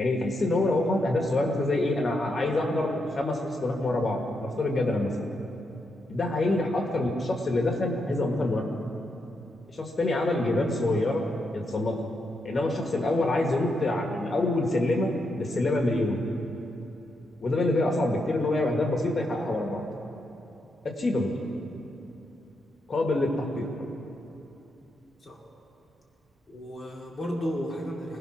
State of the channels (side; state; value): both; normal; correlation 0.82